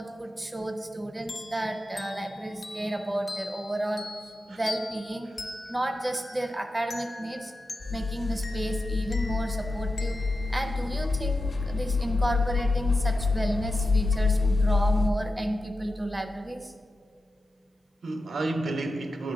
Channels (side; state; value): both; normal; correlation 0.90